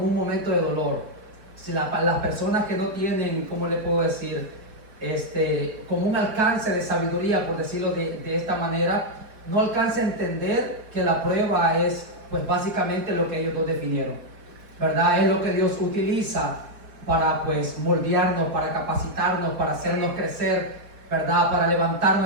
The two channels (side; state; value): left; late; 4.8 ms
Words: un momento de dolor. Si las personas que no tienen, ¿cómo le puedo decir? Como un alcance de sabiduría, por decirlo de esta manera, no alcanza a entender que la prueba es pues básicamente lo que ellos dos definieron, ¿verdad? Es lo que Dios utiliza para pues moldearnos, para capacitarnos, para hacernos crecer, ¿verdad? Para levantar